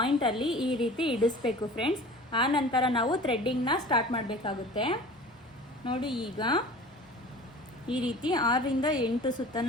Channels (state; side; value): normal; both; correlation 0.41